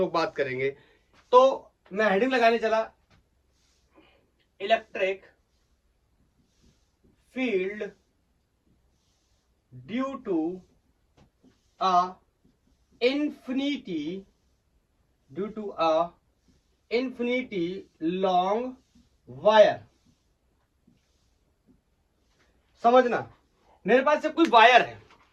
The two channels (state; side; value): identical; both; correlation 1.00